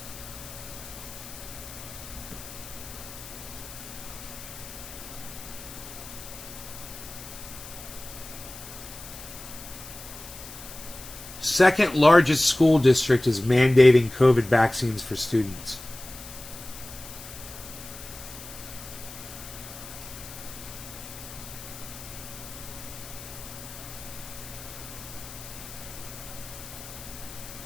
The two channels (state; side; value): noise; left; hiss, 14 dB below the sound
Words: Second largest school district is mandating COVID vaccines for students.